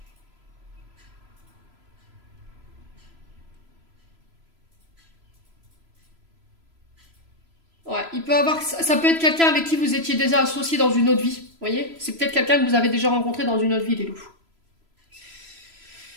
Ouais, il peut avoir, ça peut être quelqu'un avec qui vous étiez déjà associé dans une autre vie. Vous voyez? C'est peut-être quelqu'un que vous avez déjà rencontré dans une autre vie, les loups.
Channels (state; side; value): late; left; 3.0 ms